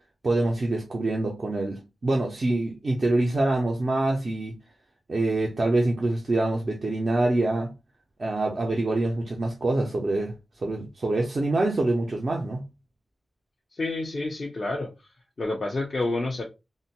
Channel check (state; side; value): normal; both; correlation 0.94